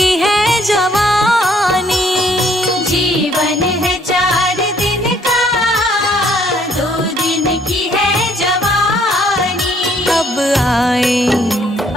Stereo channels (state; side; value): normal; both; correlation 0.64